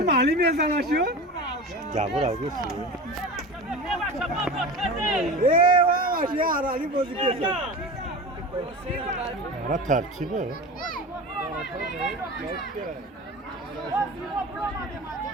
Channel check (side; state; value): both; normal; correlation 0.31